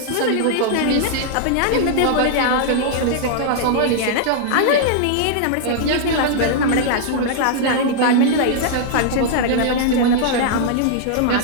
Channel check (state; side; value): different; both; correlation -0.01